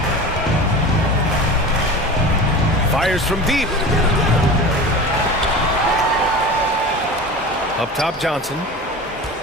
Fires from deep. Up top, Johnson.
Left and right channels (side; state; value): both; normal; correlation 0.33